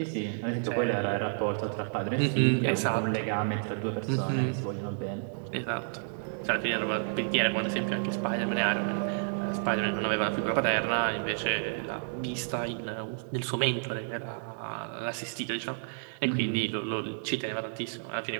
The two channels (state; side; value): silent; left; digital silence